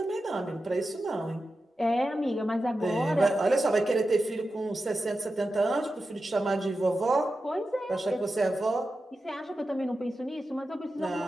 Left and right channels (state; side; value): normal; both; correlation 0.91